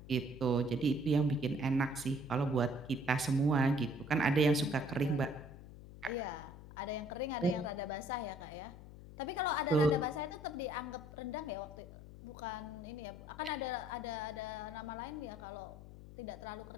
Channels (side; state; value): left; noise; hum, 15 dB below the sound